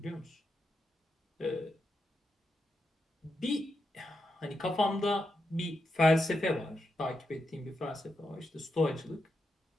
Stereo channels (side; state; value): both; normal; correlation 0.85